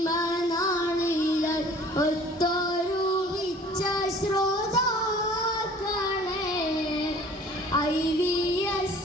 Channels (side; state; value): both; normal; correlation 0.50